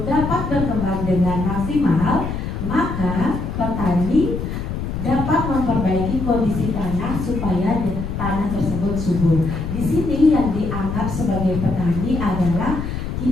dapat berkembang dengan maksimal, maka petani dapat memperbaiki kondisi tanah supaya tanah tersebut subur. Di sini yang dianggap sebagai petani adalah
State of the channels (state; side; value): noise; left; rumble, 4 dB below the sound